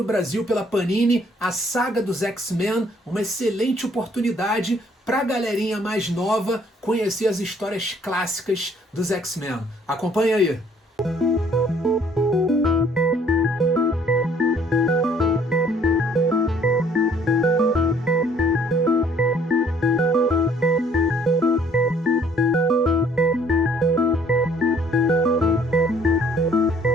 Brasil pela Panini, a Saga dos X-Men, uma excelente oportunidade pra galerinha mais nova conhecer as histórias clássicas dos X-Men. Acompanha aí.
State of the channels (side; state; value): both; normal; correlation 0.60